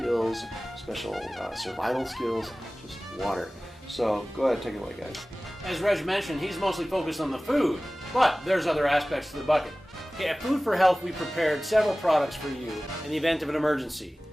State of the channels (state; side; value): normal; both; correlation 0.98